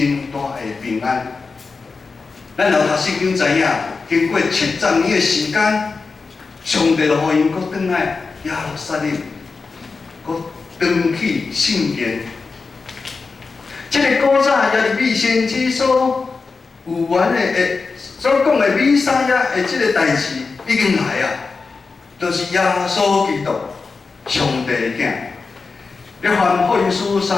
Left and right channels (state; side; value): quieter; right; 4.4 dB